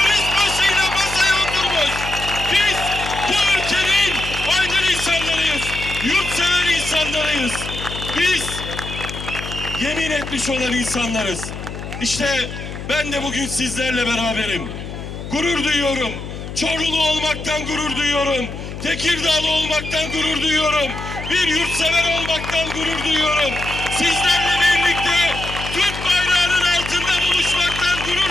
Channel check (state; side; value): noise; left; hum, 9 dB below the sound